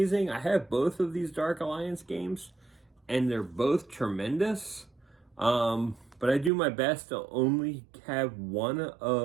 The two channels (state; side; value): drops out; left; at 6.5 s